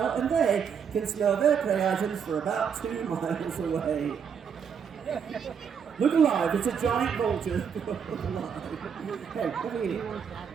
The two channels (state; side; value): quieter; left; 7.1 dB